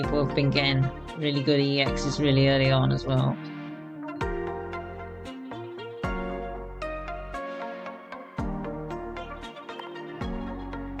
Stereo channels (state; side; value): identical; both; correlation 1.00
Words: have been getting really good EXs really early on as well.